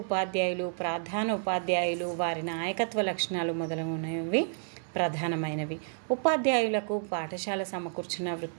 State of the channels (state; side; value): silent; left; digital silence